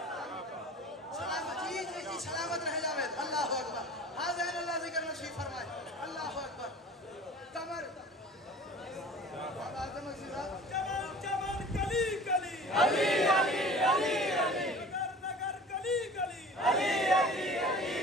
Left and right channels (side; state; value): both; normal; correlation 0.42